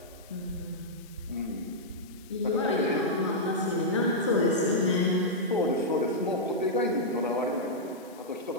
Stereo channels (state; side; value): noise; left; hiss, 24 dB below the sound